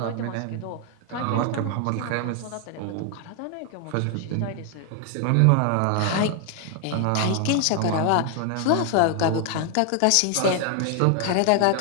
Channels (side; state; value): both; different; correlation 0.00